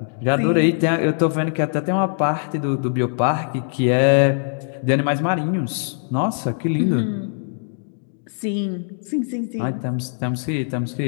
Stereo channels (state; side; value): silent; right; digital silence